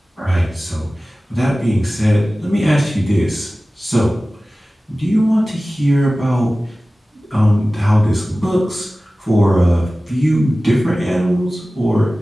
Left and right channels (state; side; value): normal; both; correlation 0.97